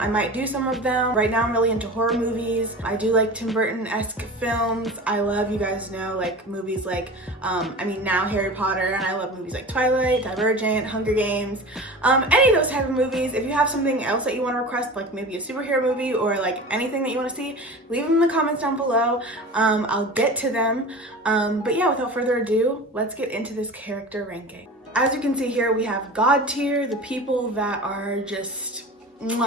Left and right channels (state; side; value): normal; both; correlation 0.34